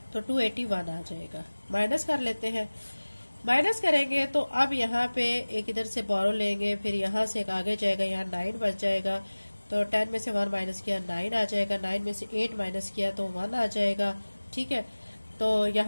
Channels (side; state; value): both; inverted; correlation -1.00